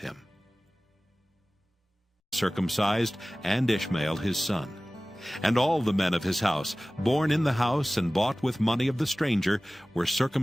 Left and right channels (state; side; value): normal; both; correlation 0.98